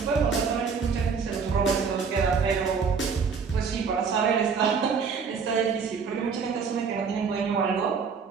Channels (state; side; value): quieter; left; 5.7 dB